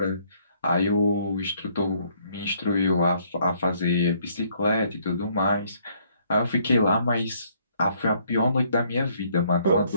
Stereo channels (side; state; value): both; inverted; correlation -0.66